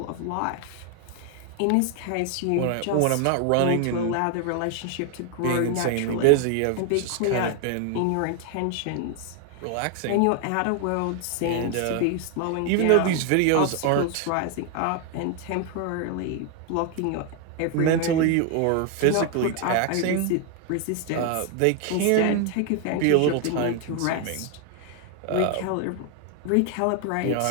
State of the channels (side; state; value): both; different; correlation 0.00